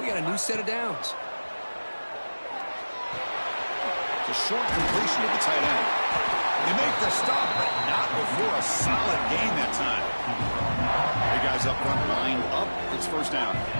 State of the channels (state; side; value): inverted; both; correlation -1.00